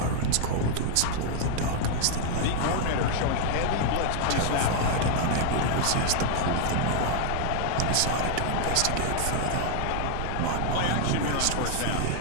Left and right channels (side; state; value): both; different; correlation 0.00